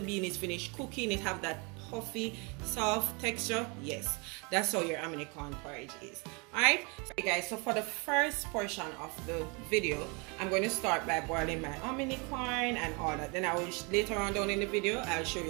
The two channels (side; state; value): left; quieter; 31.3 dB